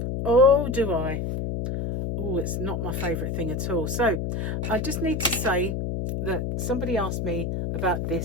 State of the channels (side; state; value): left; noise; hum, 2 dB below the sound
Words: Oh, do I? Oh, it's not my favourite thing at all. So I just need to say that somebody asked me about